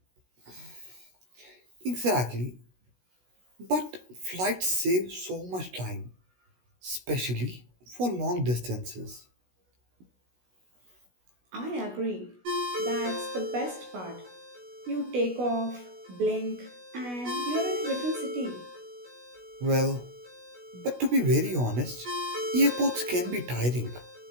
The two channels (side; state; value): left; late; 16 ms